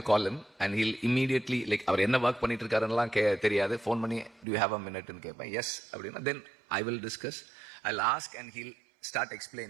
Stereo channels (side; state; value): left; drops out; at 4.5 s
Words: call him and he'll immediately, like, அவர் என்ன ஒர்க் பண்ணிட்டு இருக்காருன்னெல்லாம் தெரியாது, ஃபோன் பண்ணி do you have a minute ன்னு கேட்பேன். எஸ் அப்படின்னா then I will discuss, I'll ask and he'll start